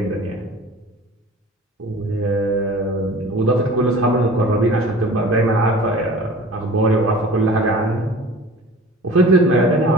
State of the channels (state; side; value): normal; both; correlation 0.42